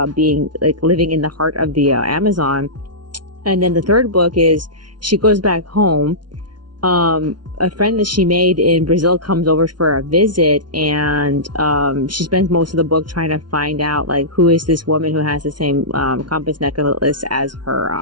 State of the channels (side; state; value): left; late; 0.70 ms